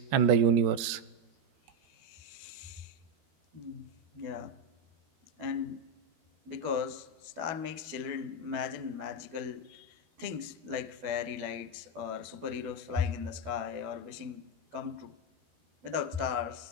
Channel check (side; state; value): left; late; 12 ms